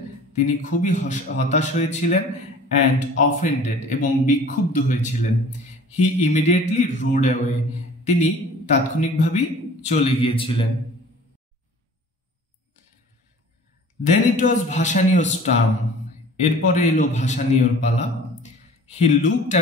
তিনি খুবই হতাশ হয়েছিলেন, অ্যান্ড অফেন্ডেড, এবং বিক্ষুব্ধ হয়েছিলেন। হি ইমিডিয়েটলি রোড অ্যাওয়ে, তিনি তাৎক্ষণিকভাবেই চলে গিয়েছিলেন। দেন ইট ওয়াজ ভাসানীয়'s টার্ন, এরপরে এলো ভাসানীয়র পালা। He looked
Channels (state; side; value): normal; both; correlation 0.46